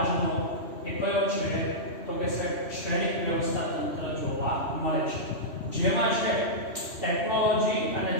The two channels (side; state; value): right; late; 3.1 ms